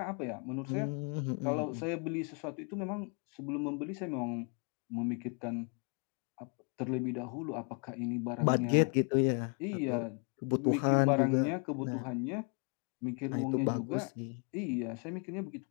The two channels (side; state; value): right; quieter; 38.0 dB